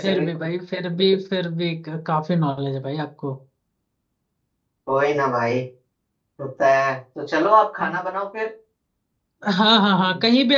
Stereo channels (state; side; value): identical; both; correlation 1.00